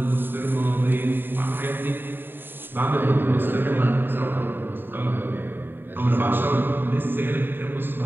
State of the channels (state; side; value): late; left; 0.095 ms